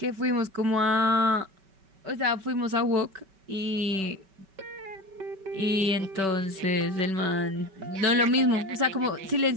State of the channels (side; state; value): left; late; 5.2 ms